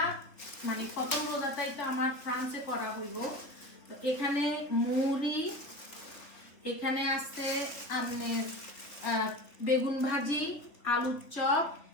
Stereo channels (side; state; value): right; late; 3.4 ms